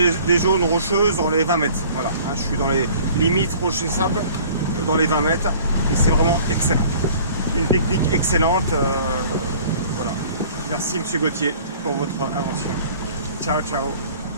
des zones rocheuses dans les 20 mètres, voilà, hein, je suis dans les limites rocher sable, dans les 20 mètres, et c'est vraiment excellent, une technique excellente, voilà, merci monsieur Gauthier pour votre invention, ciao ciao.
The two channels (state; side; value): inverted; both; correlation -0.50